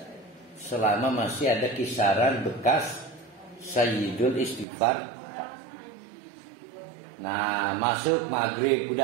Selama masih ada kisaran bekas Sayyidul Istighfar. Nah, masuk maghrib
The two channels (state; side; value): drops out; left; at 4.7 s